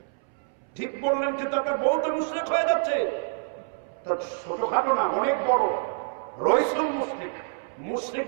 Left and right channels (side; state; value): left; silent; 60 dB below the other